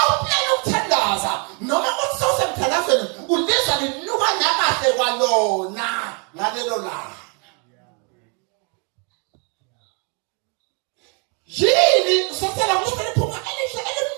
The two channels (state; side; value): quieter; left; 36.2 dB